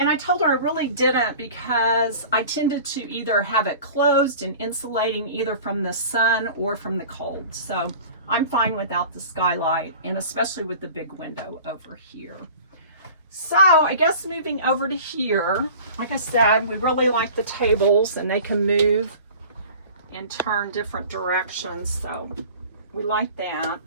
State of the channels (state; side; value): inverted; both; correlation -0.42